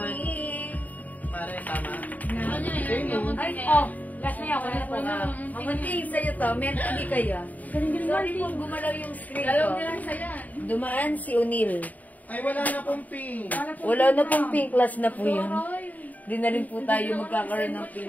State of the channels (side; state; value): right; late; 0.077 ms